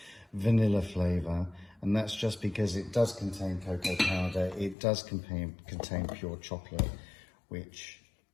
vanilla flavour. And that's just because it does contain cocoa powder, it does contain pure chocolate, which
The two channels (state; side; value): drops out; right; at 4.8 s